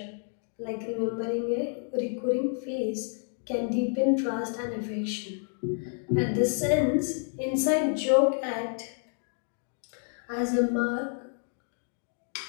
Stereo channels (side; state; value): right; silent; 56 dB below the other